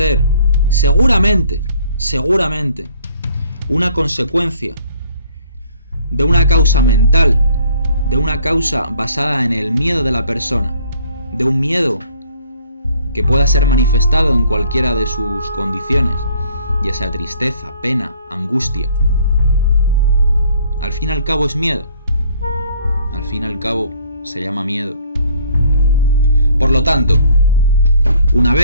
seguramente, una consecuencia de una causa mental, de una causa basada en el miedo de la persona, de un miedo que pueda ser manifestado en cualquiera de sus condiciones, ya sea tristeza, pena, angustia. Al fin y al cabo es miedo. Al fin y al cabo se llama miedo. Por lo tanto, una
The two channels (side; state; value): both; inverted; correlation -0.60